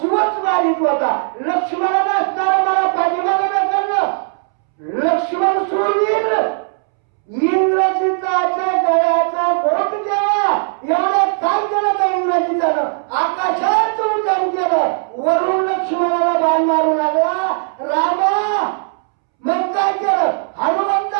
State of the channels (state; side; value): silent; left; 68 dB below the other